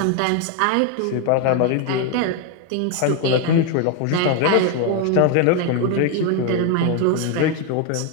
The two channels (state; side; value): different; both; correlation 0.01